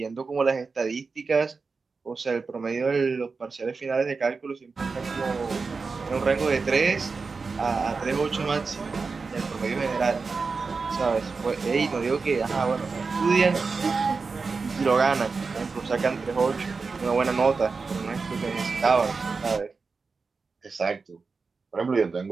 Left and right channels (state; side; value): quieter; left; 4.5 dB